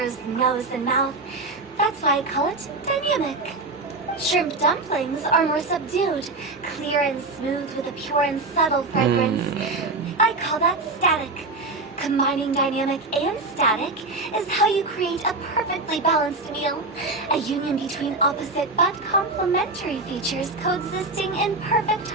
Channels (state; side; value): quieter; left; 3.3 dB